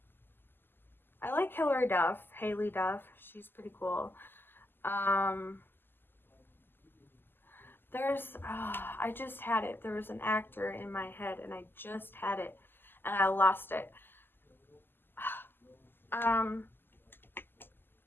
I like Hilary Duff, Haley Duff. She's pretty cool. Um, I just had it. There was an actor in my head, and I just had it, and I lost it. Um,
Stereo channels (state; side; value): late; right; 0.096 ms